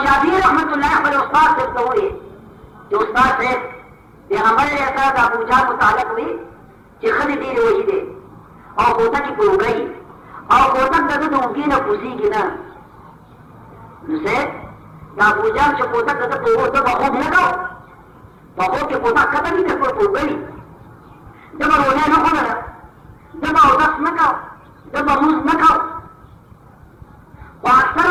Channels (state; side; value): identical; both; correlation 1.00